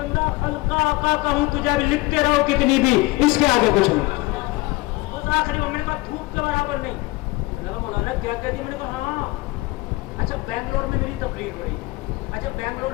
خلقہ آقا کا ہوں، تجھے بھی لکھتے رہو کتنی بھی، اس کے آگے کچھ نہیں۔ اس آخری میں نے کہا دھوپ کے برابر نہیں، میں نے کہا مولانا کیا کہہ دی؟ میں نے کہا ہاں اچھا بنگلور میں میری تقریر ہو رہی ہے، اچھا بنگلور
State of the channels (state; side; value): quieter; right; 21.7 dB